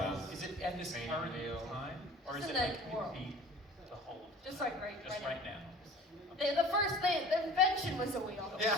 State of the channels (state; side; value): normal; both; correlation 0.44